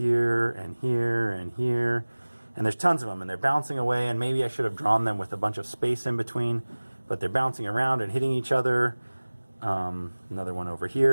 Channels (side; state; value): both; inverted; correlation -1.00